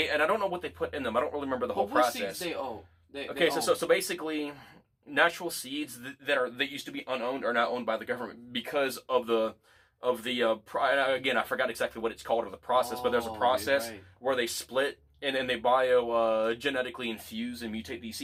I don't know what they put in them. I don't really remember the whole process. Seeds they own? So basically, natural seeds that used to be unowned are now owned by the government because of the again, I forgot exactly what it's called or the process, but there's a process where they split And then they bio genetically infuse and mutate these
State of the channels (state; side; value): identical; both; correlation 1.00